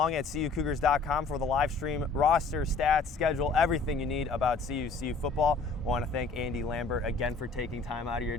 at CUCougars.com for the live stream, roster, stats, schedule, everything you need about CU football. I want to thank Andy Lambert again for taking time out of your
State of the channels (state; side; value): quieter; right; 4.2 dB